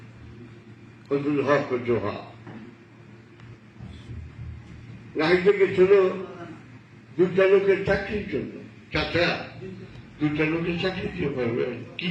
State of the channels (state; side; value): identical; both; correlation 1.00